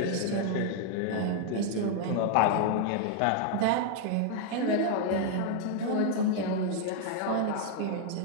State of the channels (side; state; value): both; different; correlation 0.00